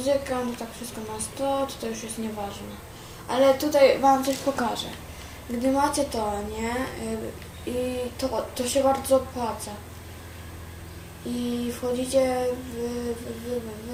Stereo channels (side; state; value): both; identical; correlation 1.00